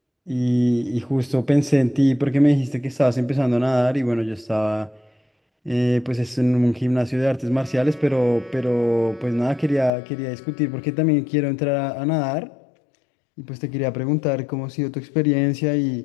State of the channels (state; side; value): drops out; right; at 9.9 s